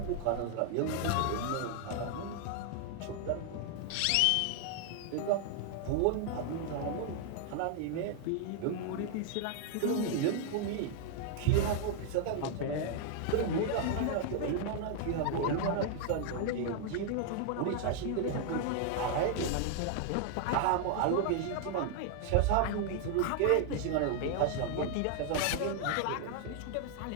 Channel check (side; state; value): both; different; correlation 0.00